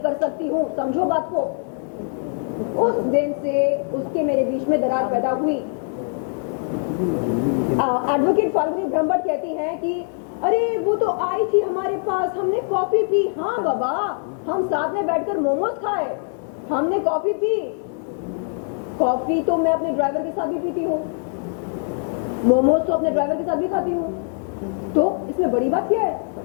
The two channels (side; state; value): right; silent; 56 dB below the other